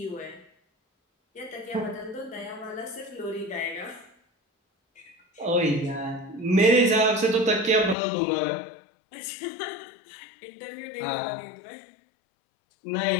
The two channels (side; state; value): right; drops out; at 8.0 s